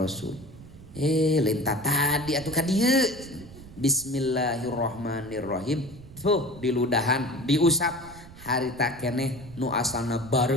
Lintah tadi atuh ka dieu. Bismillahirrahmanirrahim. Tuh diludahan, diusap. Harita keneh nu asalna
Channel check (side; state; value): right; noise; rumble, 18 dB below the sound